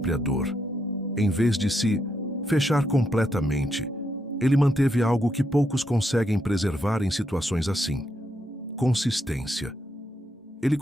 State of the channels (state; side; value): normal; both; correlation 0.79